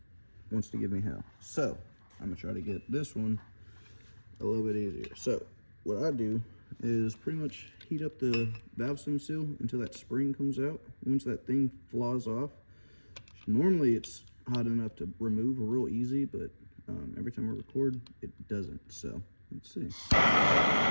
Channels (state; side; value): inverted; both; correlation -1.00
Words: wants to give me hell. So I'm gonna try to get this one a little bit easier. So what I do is pretty much heat up the valve stem seal until that spring comes out. Once that thing flaws off, normally it's hot enough to remove real easy, but every time I record, it doesn't. So let's see.